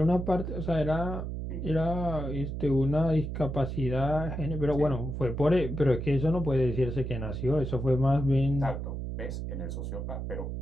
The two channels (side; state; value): right; noise; hum, 5 dB below the sound